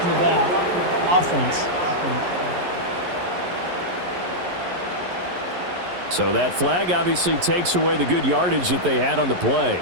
in the back. Offense. So that flag obviously takes away the good yardage that they had on the play.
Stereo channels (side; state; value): left; late; 11 ms